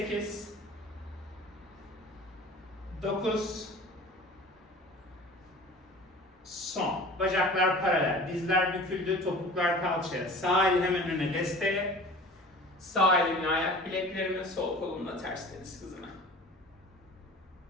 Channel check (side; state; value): both; normal; correlation 0.42